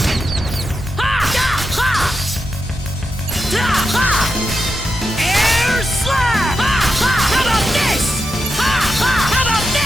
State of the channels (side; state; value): both; normal; correlation 0.87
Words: Air slap! How about this? How about